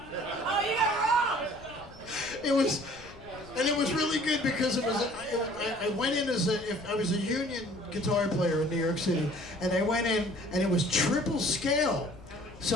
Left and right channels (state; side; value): noise; left; rumble, 20 dB below the sound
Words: Oh, you got wrong. It was really good because I went in as if I was a union guitar player in New York City, and I went in and it was triple scale,